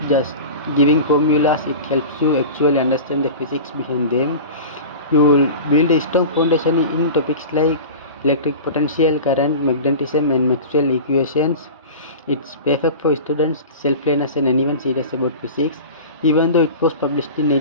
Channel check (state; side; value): inverted; both; correlation -0.34